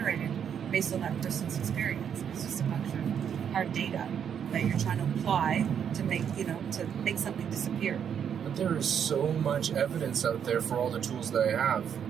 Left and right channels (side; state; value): left; quieter; 8.2 dB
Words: based on that person's experience. It's just a bunch of hard data that you're trying to apply to make something disappear. But there is so much evidence out there for all the tools that I have,